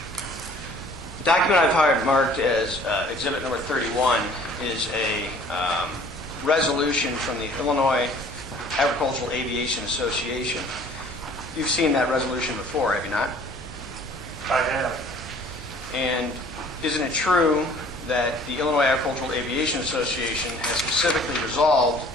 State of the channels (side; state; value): both; normal; correlation 0.53